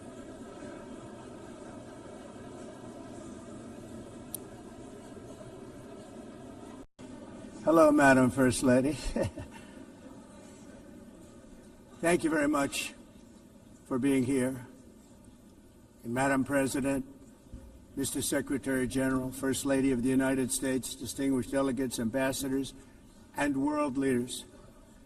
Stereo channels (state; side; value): identical; both; correlation 1.00